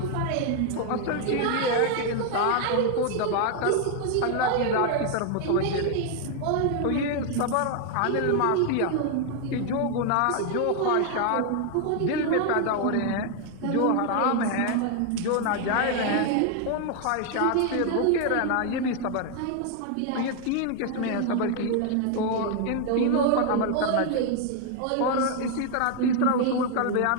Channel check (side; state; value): both; different; correlation 0.00